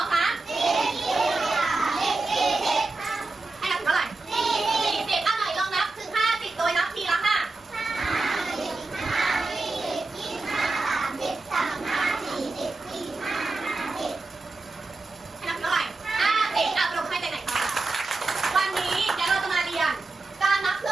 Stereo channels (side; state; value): left; quieter; 3.4 dB